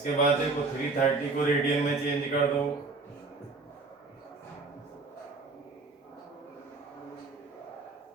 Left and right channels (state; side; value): quieter; left; 3.7 dB